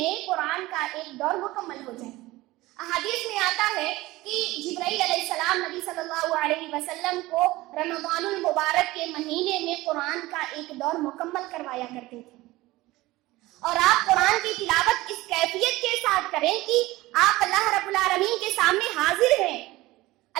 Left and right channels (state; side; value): quieter; left; 18.9 dB